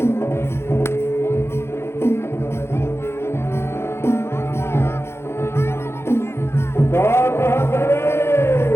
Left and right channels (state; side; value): late; right; 0.12 ms